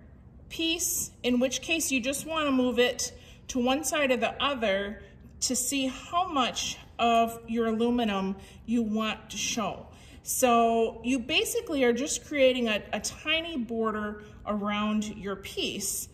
piece, in which case you just wanna move it to one side or the other to see how much of your aluminum you want to show. So you basically are just creating a tiny border around your piece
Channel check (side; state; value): both; identical; correlation 1.00